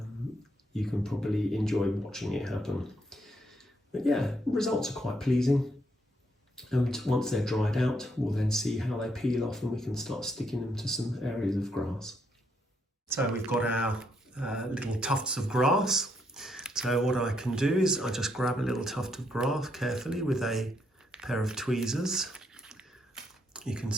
you can probably enjoy watching it happen. But yeah, results are quite pleasing. And once they're dried out, we'll then see how they peel off and we can start sticking them to some areas of grass. So we've got our little tufts of grass. So what I can do is I just grab a little tuft of grass carefully with a pair of tweezers. You can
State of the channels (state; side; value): normal; both; correlation 0.75